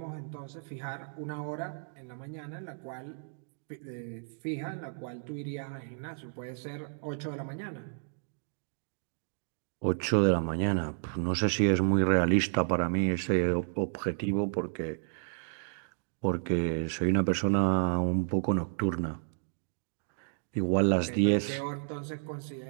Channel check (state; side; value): silent; left; digital silence